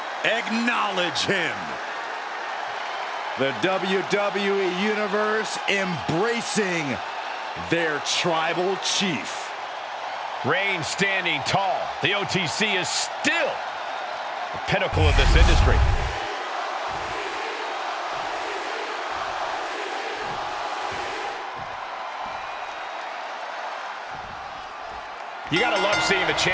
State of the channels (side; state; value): both; identical; correlation 1.00